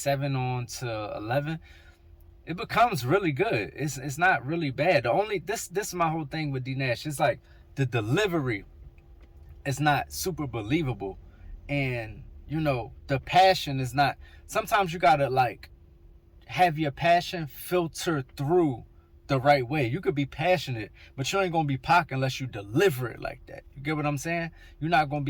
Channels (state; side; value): identical; both; correlation 1.00